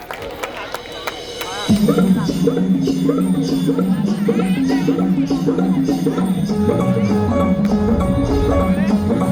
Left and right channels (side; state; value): both; identical; correlation 1.00